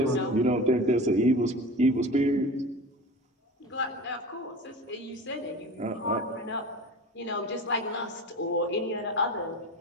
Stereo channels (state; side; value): normal; both; correlation 0.34